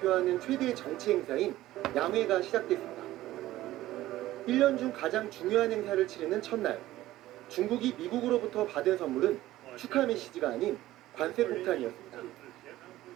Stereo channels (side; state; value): left; quieter; 15.5 dB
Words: 최대 정치 행사인 양회가 시작됐습니다. 1년 중 가장 중요한 행사를 치르는 첫날, 중국이 미국으로부터 받은 선물은 축하 메시지가 아닌 관세 폭탄이었습니다.